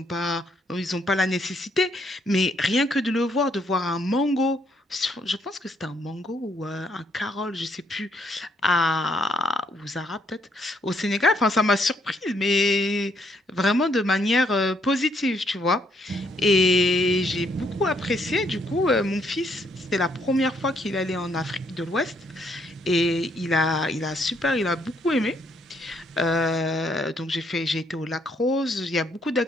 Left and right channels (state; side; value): normal; both; correlation 0.71